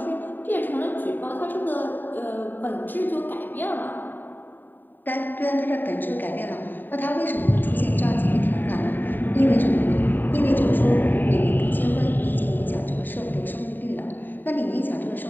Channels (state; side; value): late; right; 0.091 ms